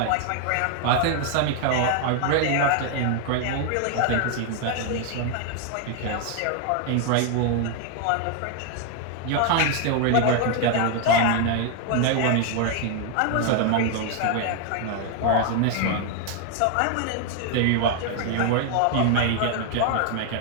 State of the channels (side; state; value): both; different; correlation 0.00